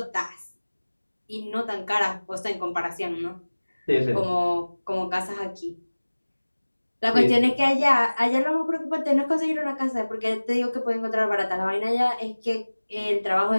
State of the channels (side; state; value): both; inverted; correlation -1.00